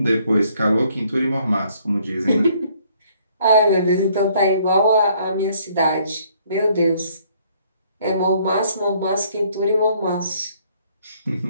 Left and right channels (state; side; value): inverted; both; correlation -0.64